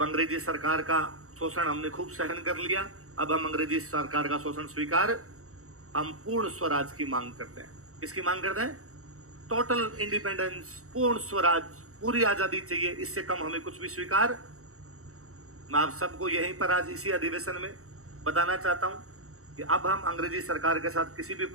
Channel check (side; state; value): left; late; 0.64 ms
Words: अंग्रेजी सरकार का शोषण हमने खूब सहन कर लिया। अब हम अंग्रेजी सरकार का शोषण स्वीकार, हम पूर्ण स्वराज की मांग करते हैं। किसकी मांग करते हैं? टोटल इंडिपेंडेंस, पूर्ण स्वराज, पूरी आजादी चाहिए। इससे कम हमें कुछ भी स्वीकार। मैं आप सबको यहीं पर आज इसी अधिवेशन में बताना चाहता हूं कि अब हम अंग्रेजी सरकार के साथ किसी भी